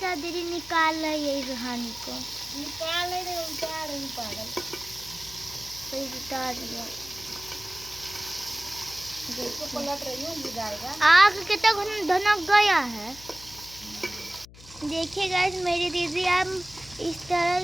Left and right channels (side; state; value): left; noise; hum, 20 dB below the sound